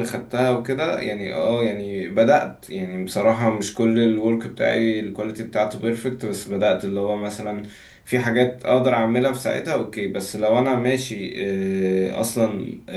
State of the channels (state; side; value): identical; both; correlation 1.00